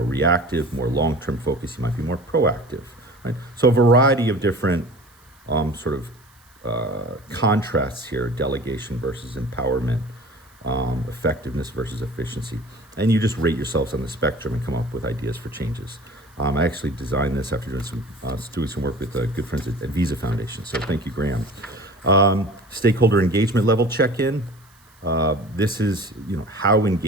reactive, more long-term focus, you might be more proactive. Right? So a variety of different contrasts here: delegation versus empowerment, effectiveness versus efficiency. And you just rate yourselves on the spectrum and come up with ideas for changes. I actually designed this after doing some work with good friends at Visa Foundation. So thank you, Graham. Stakeholder engagement level check-in. this is, how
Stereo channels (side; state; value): right; noise; hiss, 30 dB below the sound